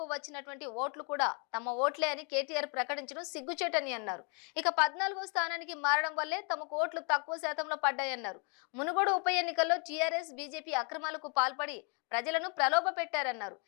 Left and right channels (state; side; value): quieter; right; 36.8 dB